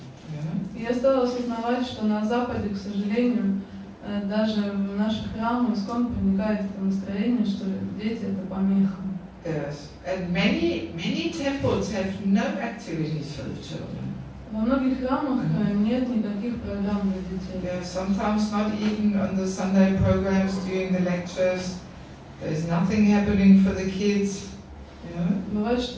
Я стала осознавать, что на Западе, к сожалению, даже в наших храмах ISKCON проникает это настроение, что дети это помеха. Yes, and many temples have no activities for the children. Во многих храмах нет никаких программ для детей. Yeah, sometimes not even on the Sunday programs during the lectures. There's nothing happening for the kids. Бывает,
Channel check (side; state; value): both; identical; correlation 1.00